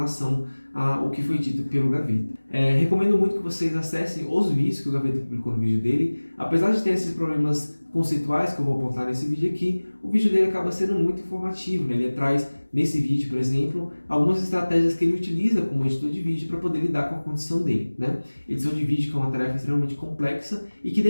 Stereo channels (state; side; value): inverted; both; correlation -1.00